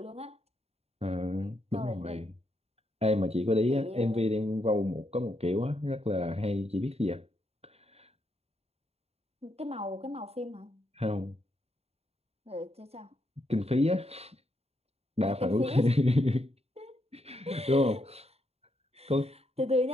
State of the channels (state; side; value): late; left; 0.30 ms